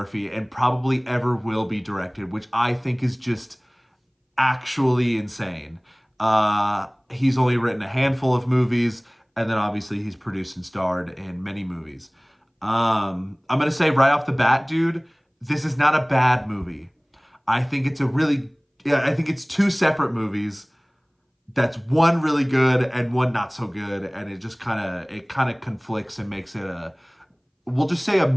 and probably ever will be directed, which I think is just actually insane. He's only written a handful of movies, and then obviously he's produced and starred in many movies. I'm gonna say right off the bat, dude, this is not a bad movie. I think it's a really, yeah, I think it's two separate movies. That's one really good and one not so good, and it kind of conflicts and makes it a, we'll just say a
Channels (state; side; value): identical; both; correlation 1.00